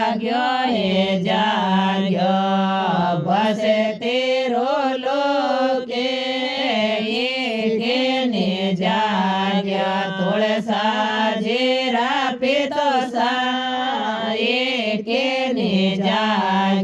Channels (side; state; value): both; identical; correlation 1.00